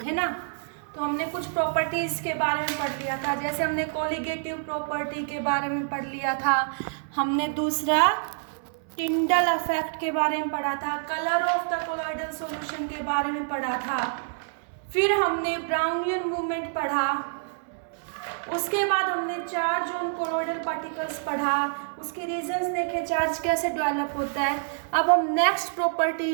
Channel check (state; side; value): silent; left; 60 dB below the other